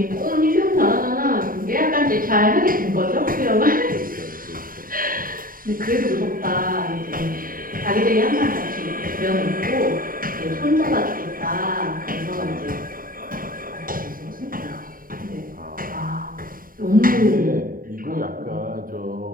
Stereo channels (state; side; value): late; left; 0.41 ms